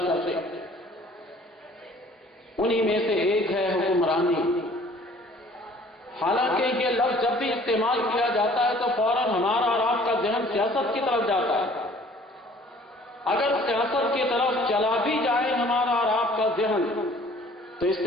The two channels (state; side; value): normal; both; correlation 0.54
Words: ہیں۔ انہی میں سے ایک ہے حکمرانی۔ حالانکہ یہ لفظ جب بھی استعمال کیا جاتا ہے تو فوراً ہمارا اور آپ کا ذہن سیاست کی طرف جاتا ہے۔ اگر سیاست کی طرف چلا بھی جائے ہمارا اور آپ کا ذہن تو اس